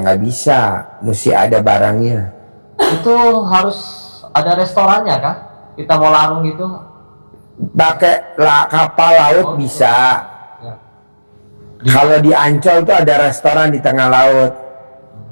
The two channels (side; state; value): both; inverted; correlation -1.00